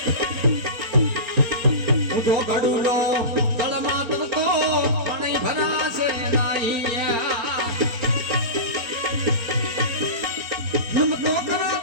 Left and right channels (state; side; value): late; left; 4.2 ms